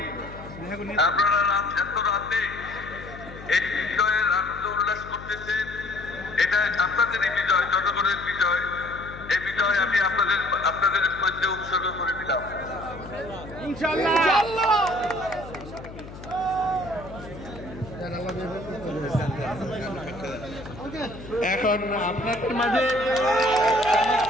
আপনারা এত রাতে এই বিজয়ের আনন্দ উল্লাস করতেছেন, এটা আপনাদেরই বিজয়, জনগণের বিজয়। এই বিজয় আমি আপনাদের মধ্যে উৎসর্গ করে দিলাম। এখন আপনাদের মাঝে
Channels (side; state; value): left; noise; hum, 14 dB below the sound